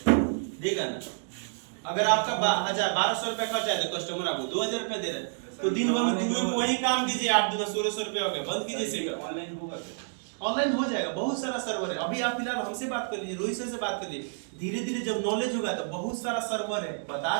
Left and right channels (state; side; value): silent; left; digital silence